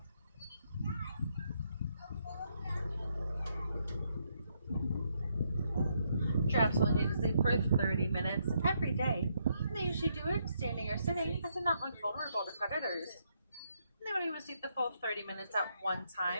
Giraffes only need to sleep for 30 minutes every day. And they usually do it standing or sitting, as they're not vulnerable to predators. And they won't even sleep the full 30 minutes at one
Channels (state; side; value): inverted; both; correlation -0.76